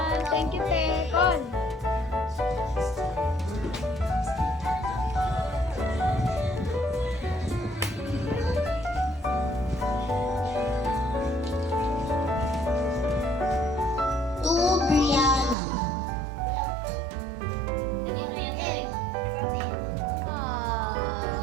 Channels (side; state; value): left; drops out; at 15.6 s